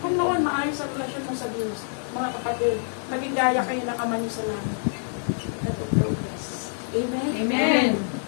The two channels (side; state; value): right; silent; digital silence